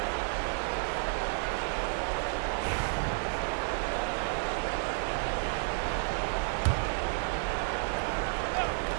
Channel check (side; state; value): left; silent; 57 dB below the other